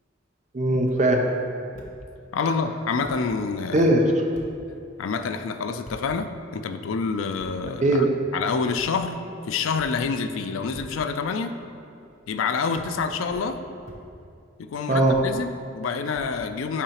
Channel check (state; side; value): normal; both; correlation 0.31